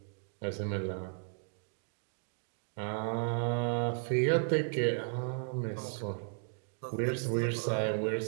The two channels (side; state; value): left; silent; 55 dB below the other